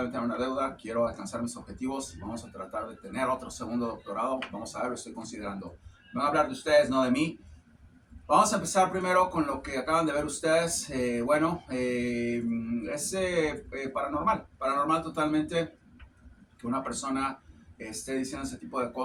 a meter en una deuda, quiero alcanzar mis objetivos, vamos a tratar de tener otro segundo doctorado, vamos a ver, lo estoy considerando. Me voy a hablar de ustedes, no de mí. Vamos a empezar primero con lo que acaban de ver ustedes. Es paranormal totalmente que una persona esté diciendo ese tipo de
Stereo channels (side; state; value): both; identical; correlation 1.00